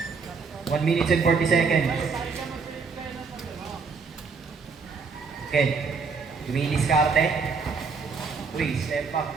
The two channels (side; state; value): left; quieter; 5.0 dB